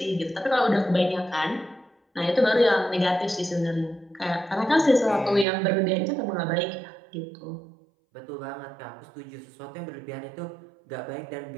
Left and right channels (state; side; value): drops out; left; at 5.5 s